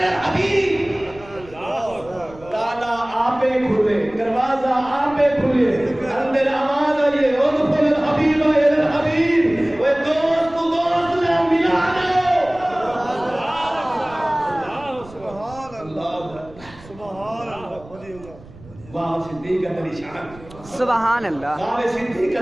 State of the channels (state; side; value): noise; right; rumble, 21 dB below the sound